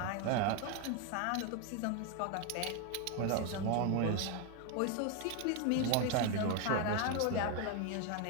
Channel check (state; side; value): different; both; correlation 0.01